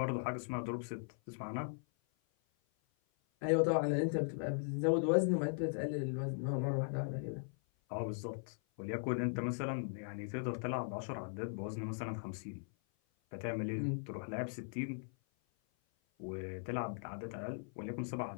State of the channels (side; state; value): right; silent; 52 dB below the other